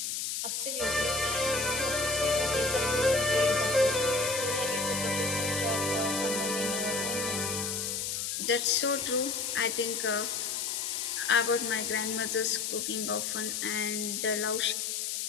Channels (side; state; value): left; noise; hiss, 2 dB below the sound